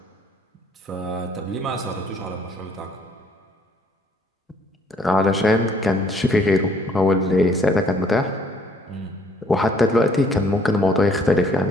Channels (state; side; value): normal; both; correlation 0.62